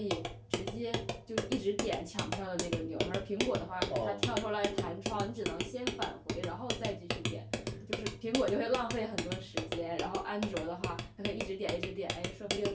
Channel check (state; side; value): identical; both; correlation 1.00